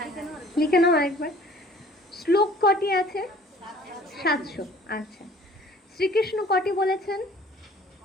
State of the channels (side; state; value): both; normal; correlation 0.52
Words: লিখে নাও আরেকবার। শ্লোক কটি আছে? 700। আচ্ছা, শ্রীকৃষ্ণ কটি বলেছেন?